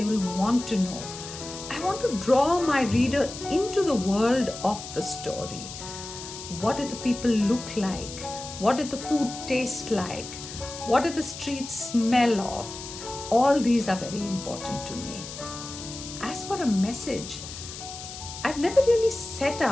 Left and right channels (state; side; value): noise; left; hiss, 11 dB below the sound